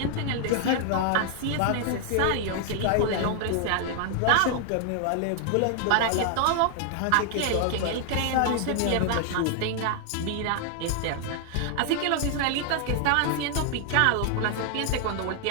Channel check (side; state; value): both; different; correlation 0.00